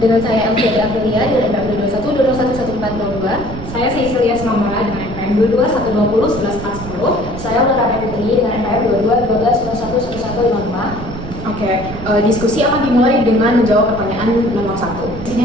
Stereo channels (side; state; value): right; noise; rumble, 10 dB below the sound